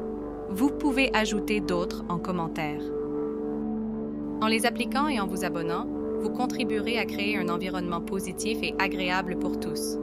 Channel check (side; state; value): both; identical; correlation 1.00